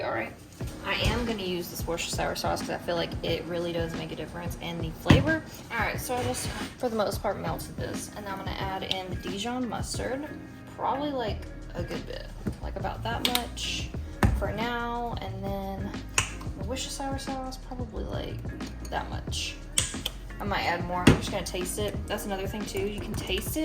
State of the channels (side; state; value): both; identical; correlation 1.00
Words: all right. I am gonna use this Worcestershire sauce because I feel like it really does make a difference in the flavor. All right, so I just, for the most part, melted this, and I'm gonna add in the Dijon mustard, probably like a good bit, like about that much for now, and then the Worcestershire sauce, probably like that much. I might add more. I'm just gonna taste it. That's another thing too. You can taste